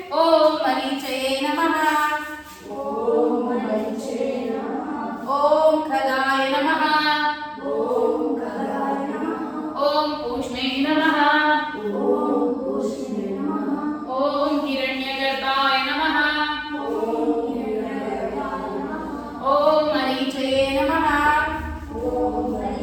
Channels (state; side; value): identical; both; correlation 1.00